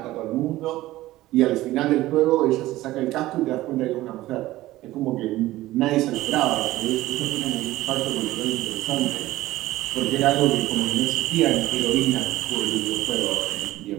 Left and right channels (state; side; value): quieter; left; 16.6 dB